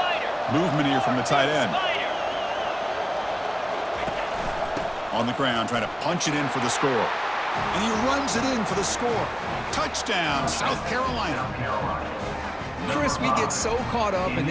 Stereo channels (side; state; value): both; identical; correlation 1.00